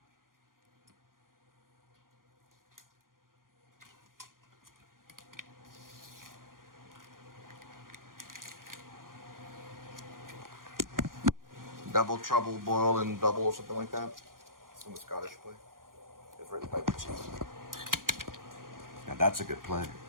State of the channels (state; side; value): late; left; 0.91 ms